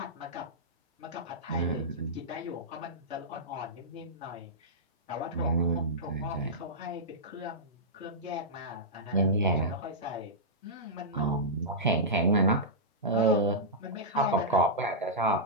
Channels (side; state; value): both; normal; correlation -0.13